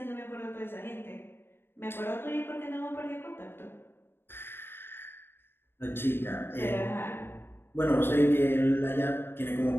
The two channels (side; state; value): right; late; 0.11 ms